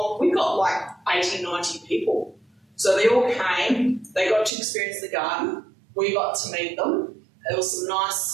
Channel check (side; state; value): left; drops out; at 4.5 s